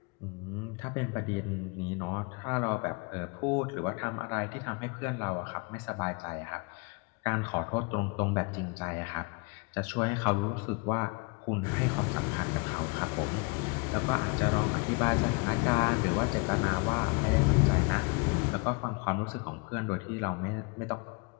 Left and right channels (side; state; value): right; quieter; 30.7 dB